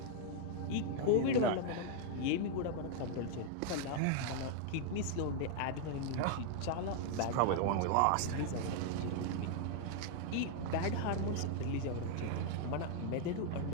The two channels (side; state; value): both; different; correlation 0.00